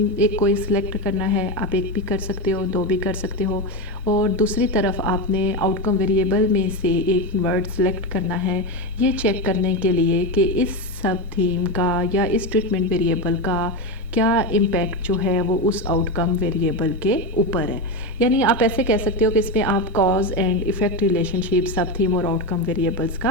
ایک کوئی سلیکٹ کرنا ہے، آپ ایک بھی کر سکتے ہو، دو بھی کر سکتے ہو، اور دوسری طرف آپ نے آؤٹ کم ویریبل میں سے ایک ورڈ سلیکٹ کرنا ہے یہ چیک کرنے کے لیے کہ اس سب تھیم کا یا اس ٹریٹمنٹ ویریبل کا کیا امپیکٹ جو ہے وہ اس آؤٹ کم ویریبل کے اوپر ہے. یعنی آپ ایسے کہہ سکتے ہو کہ اس میں آپ cause and effect relationship sub theme اور آؤٹ کم ویریبلس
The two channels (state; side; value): normal; both; correlation 0.14